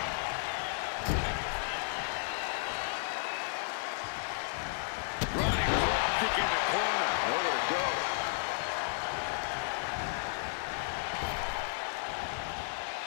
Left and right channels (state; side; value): silent; right; 55 dB below the other